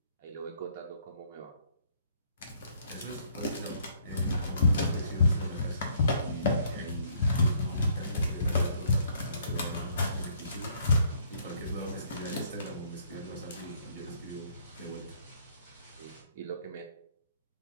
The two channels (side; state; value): both; inverted; correlation -0.64